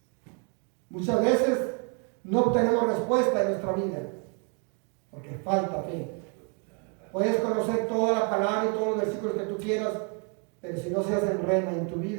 Muchas veces no obtenemos respuesta en nuestra vida, porque falta fe. Puedes conocer toda la palabra y todos los versículos que tú quieras, pero si no se hacen rema en tu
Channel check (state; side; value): quieter; left; 38.0 dB